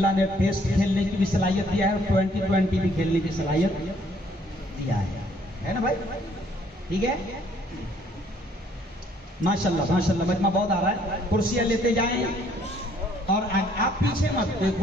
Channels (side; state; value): both; normal; correlation 0.63